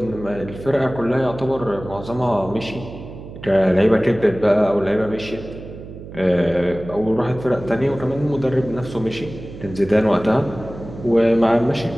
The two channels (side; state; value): right; noise; hum, 14 dB below the sound